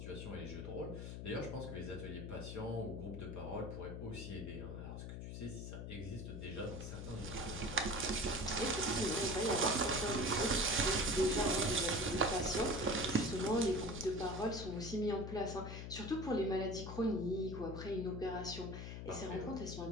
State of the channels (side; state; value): left; noise; hum, 7 dB below the sound